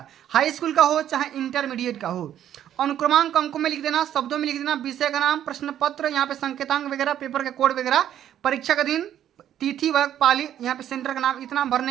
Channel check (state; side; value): quieter; left; 10.8 dB